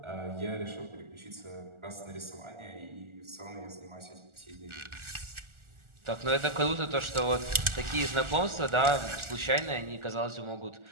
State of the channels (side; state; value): left; late; 1.4 ms